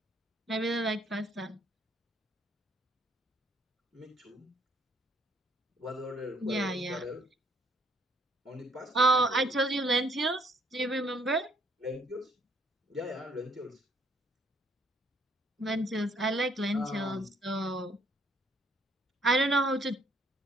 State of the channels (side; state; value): both; normal; correlation 0.65